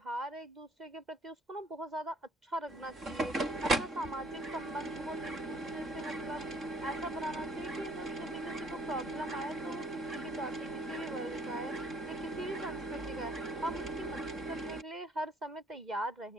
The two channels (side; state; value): both; normal; correlation 0.60